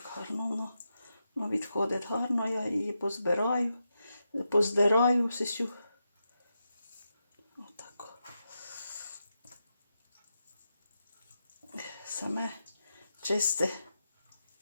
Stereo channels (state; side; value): inverted; both; correlation -0.86